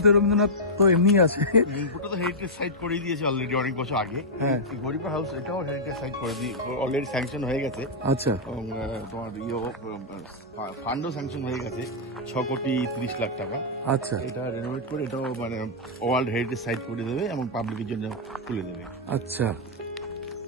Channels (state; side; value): normal; both; correlation -0.08